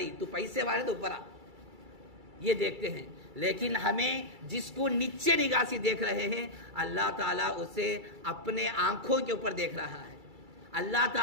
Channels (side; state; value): left; late; 2.3 ms